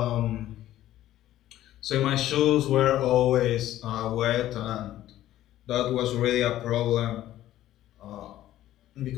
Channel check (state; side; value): quieter; right; 13.6 dB